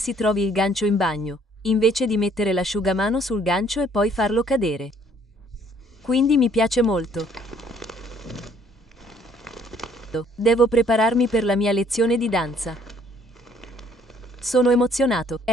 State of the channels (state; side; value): normal; both; correlation 0.62